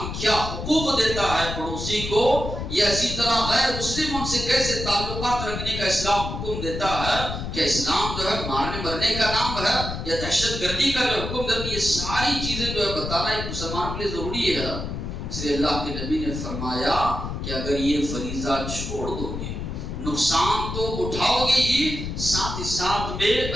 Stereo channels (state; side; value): noise; left; rumble, 5 dB below the sound